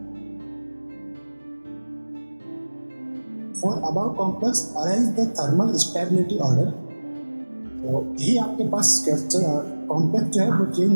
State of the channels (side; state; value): both; inverted; correlation -1.00